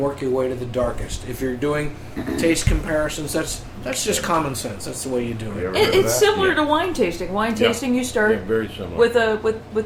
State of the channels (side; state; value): both; identical; correlation 1.00